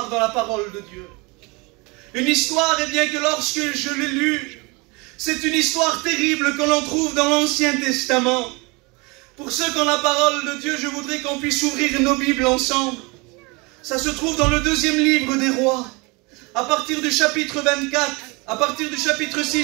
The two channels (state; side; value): quieter; left; 27.5 dB